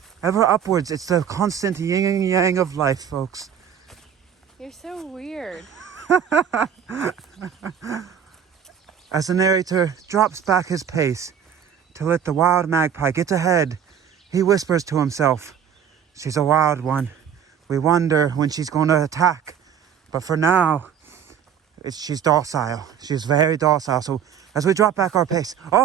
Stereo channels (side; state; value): left; quieter; 8.4 dB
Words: ever upwards. It's the constant yin and yang of life, folks. You're so weird. As the narrator drops back his pace to let the wild magpie get ahead, he whispers to himself, she's a wild one. We wonder when she's going to attack. But for now, she's docile. She's very docile. So as we drop back our pace,